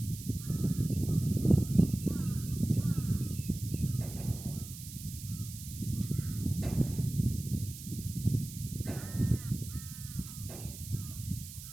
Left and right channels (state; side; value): noise; right; hiss, 13 dB below the sound